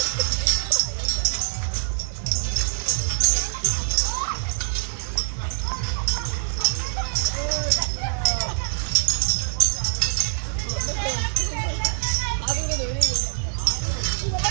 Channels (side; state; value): left; silent; digital silence